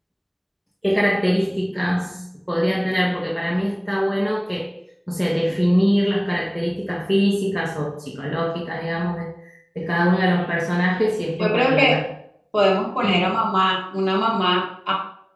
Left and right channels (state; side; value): identical; both; correlation 1.00